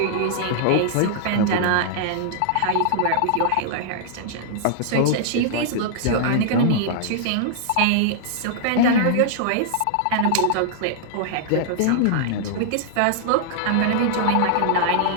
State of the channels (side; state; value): both; different; correlation -0.01